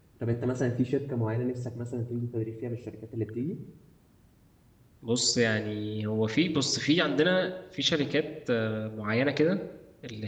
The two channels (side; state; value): both; identical; correlation 1.00